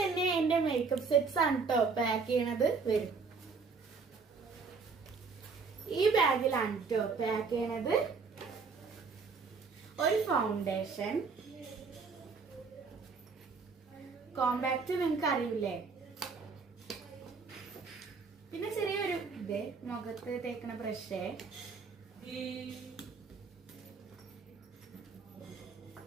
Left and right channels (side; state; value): left; quieter; 4.9 dB